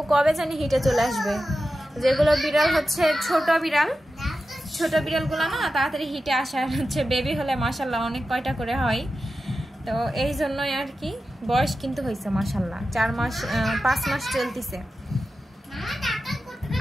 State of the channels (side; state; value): both; normal; correlation 0.92